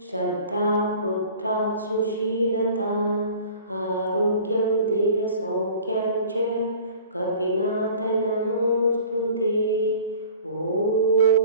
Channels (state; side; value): inverted; both; correlation -0.46